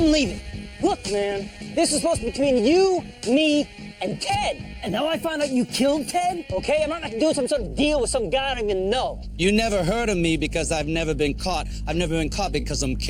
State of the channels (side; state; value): both; identical; correlation 1.00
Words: leaving. Look, man, this is supposed to be between you, me, and Ted. And now I find out you killed Ted, okay? I'm not gonna do some sort of deal with some guy I don't even know. You never heard of me because I've never been caught. I've never been caught because I'm